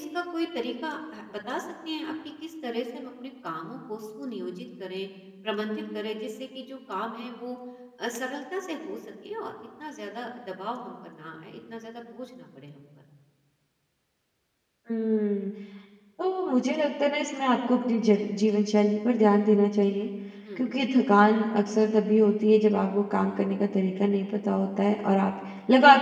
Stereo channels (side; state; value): both; identical; correlation 1.00